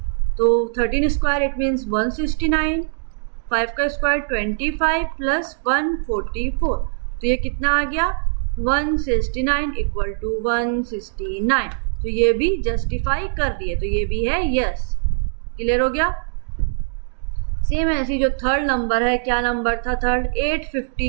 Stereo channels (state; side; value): silent; left; digital silence